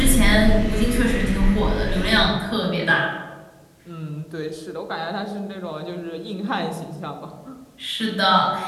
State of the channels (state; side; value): identical; both; correlation 1.00